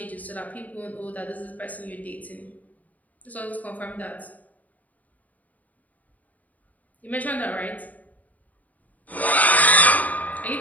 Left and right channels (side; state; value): right; late; 0.075 ms